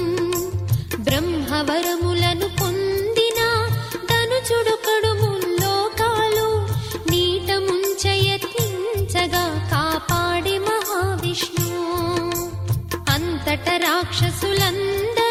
బ్రహ్మవరములను పొందిన ధనుజుడొకడు ముల్లోకాలు నీట ముంచయత్నించగా కాపాడే మహావిష్ణు. అంతట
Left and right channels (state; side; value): identical; both; correlation 1.00